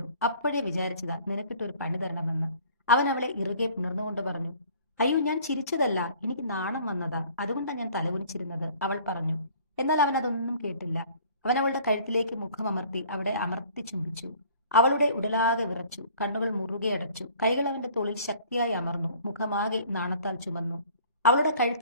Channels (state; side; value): inverted; both; correlation -0.52